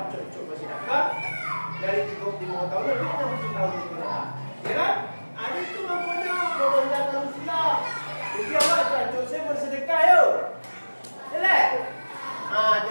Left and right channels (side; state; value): both; inverted; correlation -1.00